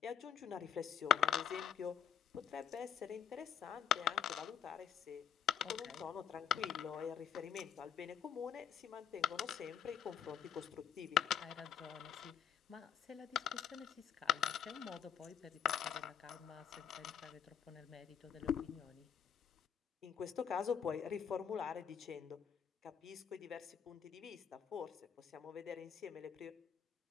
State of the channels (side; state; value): right; quieter; 8.0 dB